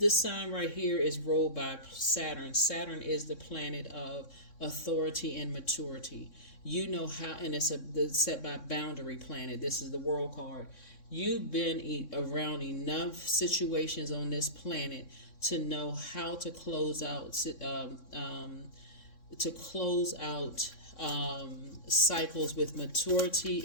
sign right here is ruled by Saturn. Saturn is the planet of authority and maturity. You know how, and it's set by boundary planet. This is the world card. You've been around enough situations on this planet to know how to close out cycles with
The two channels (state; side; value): late; right; 3.6 ms